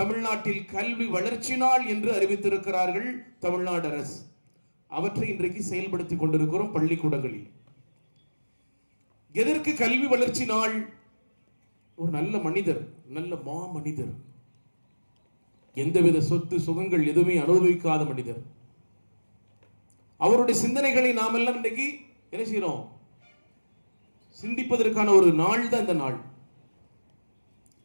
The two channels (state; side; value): inverted; both; correlation -1.00